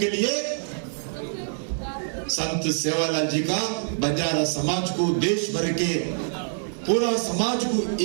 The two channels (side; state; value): left; silent; digital silence